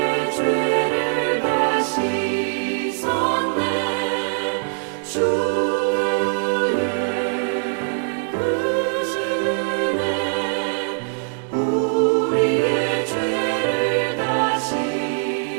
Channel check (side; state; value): left; silent; 64 dB below the other